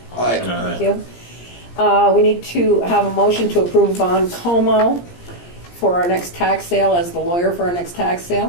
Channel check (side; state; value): right; late; 17 ms